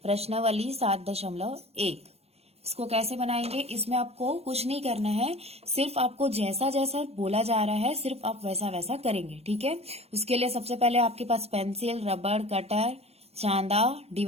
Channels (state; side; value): late; left; 0.30 ms